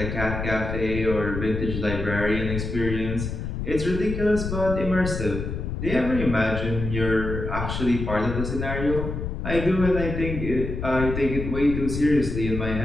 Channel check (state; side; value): noise; left; rumble, 4 dB below the sound